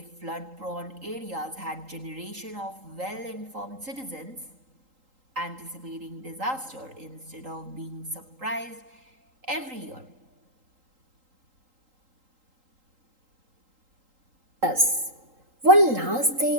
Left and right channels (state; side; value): late; left; 3.8 ms